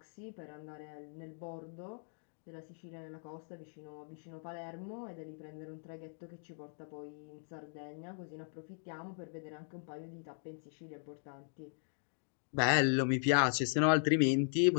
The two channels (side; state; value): right; silent; digital silence